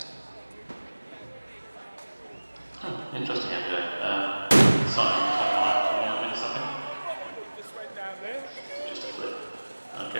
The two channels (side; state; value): both; inverted; correlation -1.00